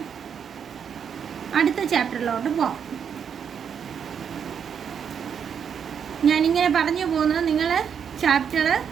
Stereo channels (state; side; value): quieter; left; 7.5 dB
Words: അടുത്ത ചാപ്റ്ററിലോട്ട് പോകാം. ഞാനിങ്ങനെ പറഞ്ഞു പോകുന്നത് നിങ്ങൾ ചാപ്റ്റർ